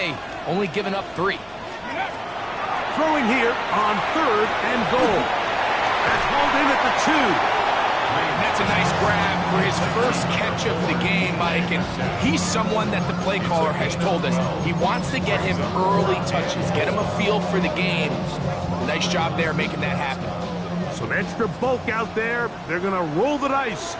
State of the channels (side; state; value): left; noise; hum, 29 dB below the sound